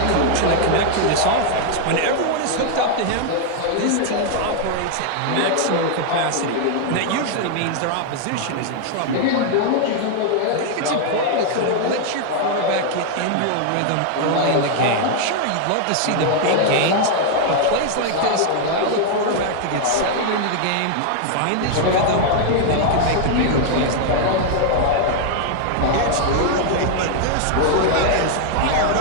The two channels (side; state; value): both; different; correlation 0.00